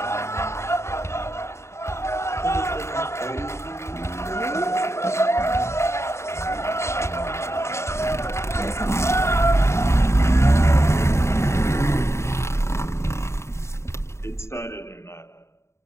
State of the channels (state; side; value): late; right; 0.13 ms